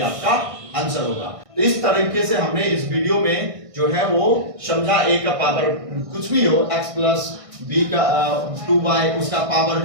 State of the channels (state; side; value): late; left; 1.6 ms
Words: आंसर होगा। तो इस तरीके से हमने इस वीडियो में जो है वो समझा a का पावर कुछ भी हो x प्लस b का 2y उसका पावर